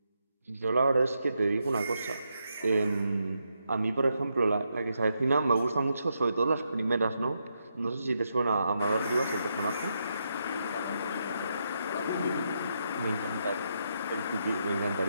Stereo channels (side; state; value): both; inverted; correlation -0.81